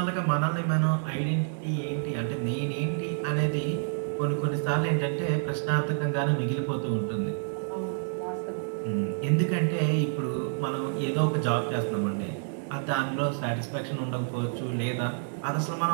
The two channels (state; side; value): silent; left; 59 dB below the other